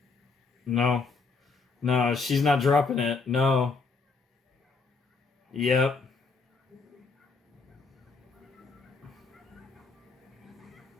No. No, she's not dropping it. No. Yep.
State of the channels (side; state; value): right; quieter; 4.4 dB